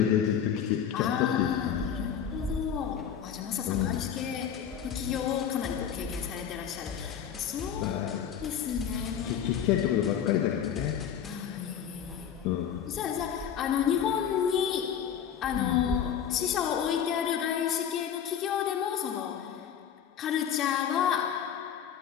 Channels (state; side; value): quieter; right; 8.6 dB